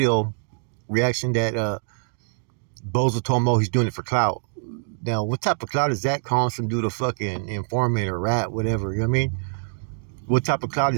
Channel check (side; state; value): left; silent; digital silence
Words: reaction that Bozo told him, he's doing it for clout. Now, what type of clout is that, calling some dude a fucking informant or rat, whatever, you know what I mean? What type of clout